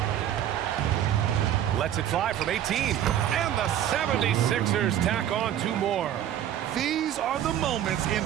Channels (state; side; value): quieter; left; 11.0 dB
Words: Lets it fly from 18. And the 76ers tack on 2 more. These are the moments